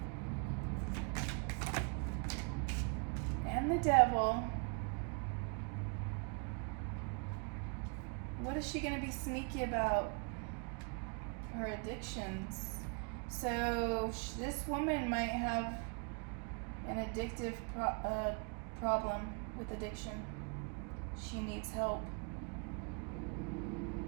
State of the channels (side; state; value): left; quieter; 35.5 dB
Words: And the Devil. What is she going to be sneaky about? Her addictions. So this woman might have an addictive problem with addiction. She needs help.